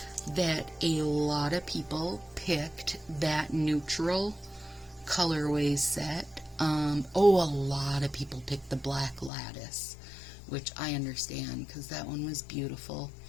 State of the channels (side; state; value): right; drops out; at 9.3 s